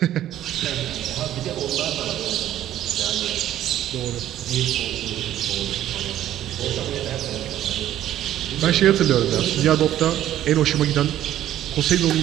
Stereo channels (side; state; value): left; quieter; 12.4 dB